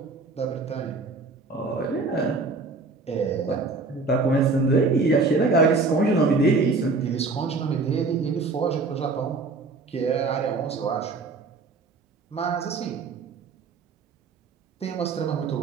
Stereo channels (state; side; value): quieter; left; 4.0 dB